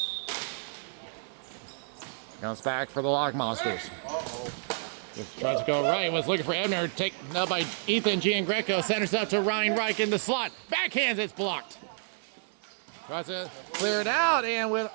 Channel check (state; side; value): silent; left; 58 dB below the other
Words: Comes back for the Lock Monsters. Just tries to go right. Was looking for Ebner. Taken up by Ethan Giangreco. Centers up to Ryan Reich in the slot. Backhands, it's blocked. Tries to clear it out, and with